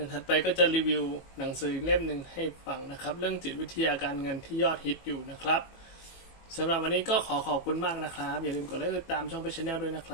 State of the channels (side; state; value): right; late; 18 ms